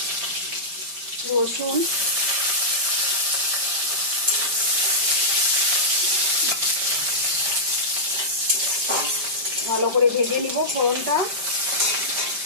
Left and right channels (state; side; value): late; left; 5.1 ms